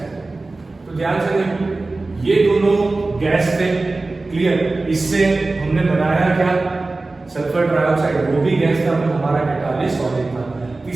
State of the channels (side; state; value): left; quieter; 3.3 dB